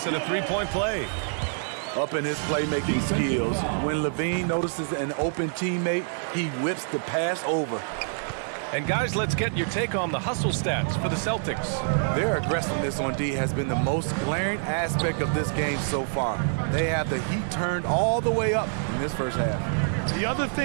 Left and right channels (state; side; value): silent; left; digital silence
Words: at a 3-point play. Up in his playmaking skills, when Levine notices an open teammate, he whips the pass over. And guys, let's get your take on the hustle stats for the Celtics. Their aggressiveness on D has been the most glaring aspect of this game so far. They have the heat turned all the way up in this first half. The other